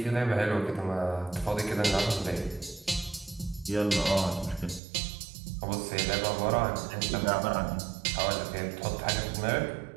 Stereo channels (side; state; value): left; drops out; at 4.8 s